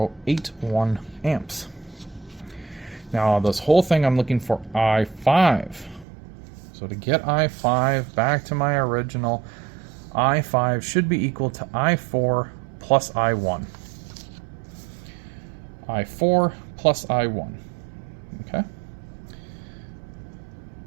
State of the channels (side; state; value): left; drops out; at 6.1 s